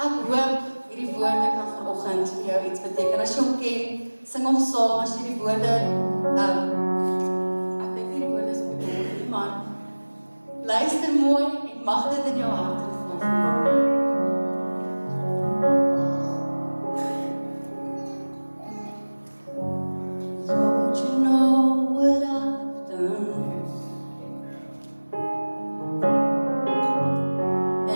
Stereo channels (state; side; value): inverted; both; correlation -1.00